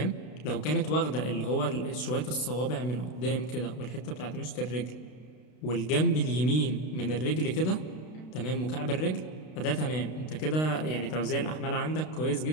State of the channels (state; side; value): late; right; 32 ms